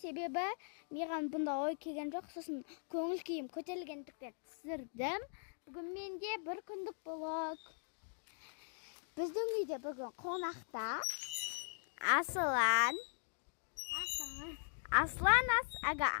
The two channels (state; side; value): silent; right; digital silence